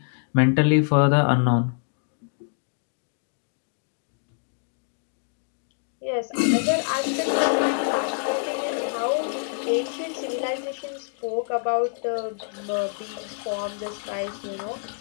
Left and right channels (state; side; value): silent; right; digital silence